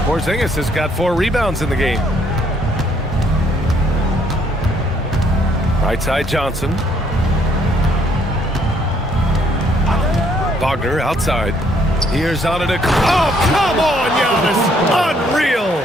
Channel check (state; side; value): normal; both; correlation 0.67